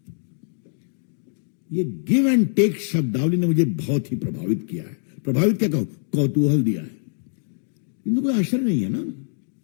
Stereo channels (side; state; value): right; silent; digital silence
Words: ये give and take शब्दावली ने मुझे बहुत ही प्रभावित किया है। प्रभावित क्या कहूं, कौतूहल दिया है। इनको कोई आश्चर्य नहीं है ना,